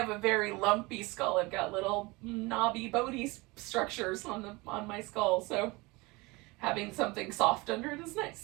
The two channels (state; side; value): quieter; left; 24.0 dB